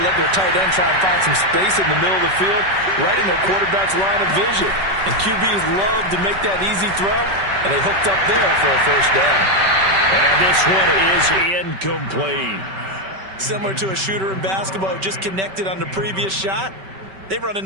let their tight end try and find some space in the middle of the field, right in their quarterback's line of vision. And QBs love to make that easy throw, and they hooked up there for a first down. And this one is incomplete. Similar to a shooter in basketball who just connected on the previous shot. They run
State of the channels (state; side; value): late; left; 5.2 ms